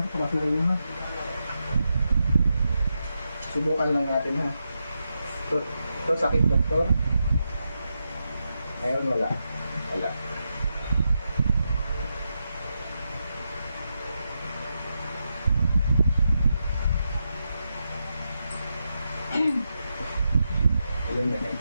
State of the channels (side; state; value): both; inverted; correlation -0.86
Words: pasok kayo ha. Subukan lang natin ha. Ito sakit, doktor. Ngayon wala. Wala.